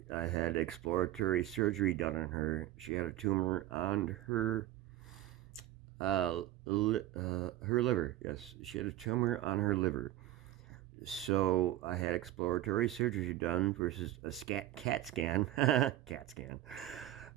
had exploratory surgery done on her. She had a tumor on her liver. Yes, she had a tumor on her liver. So I had exploratory surgery done versus a CAT scan, CAT scan,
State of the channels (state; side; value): quieter; left; 14.3 dB